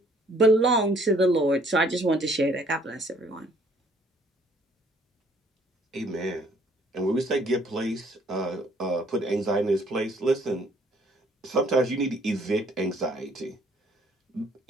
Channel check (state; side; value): normal; both; correlation 0.61